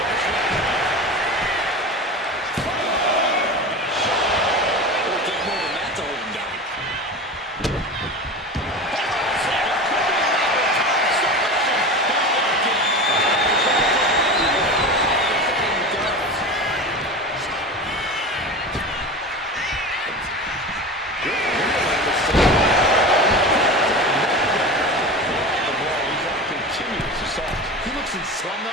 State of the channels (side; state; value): both; normal; correlation 0.29